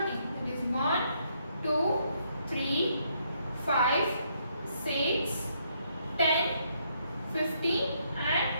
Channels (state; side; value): inverted; both; correlation -0.73